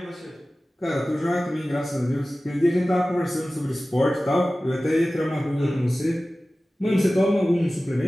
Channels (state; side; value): normal; both; correlation 0.96